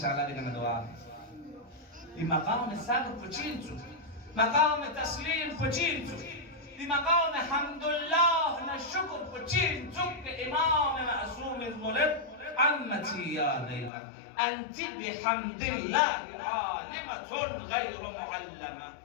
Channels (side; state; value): right; drops out; at 13.9 s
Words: الله دينا دعاء بمقام الصبر فجينتو مقام التسليم فجينتو بمقام حمد الله نشكر فجين زك إمام معصوم الملك عمتي يا ليلى أنت بحمد الله عالمة غير معلمة